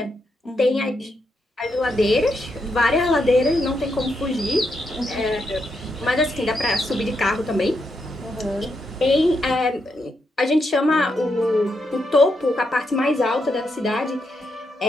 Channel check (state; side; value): normal; both; correlation 0.81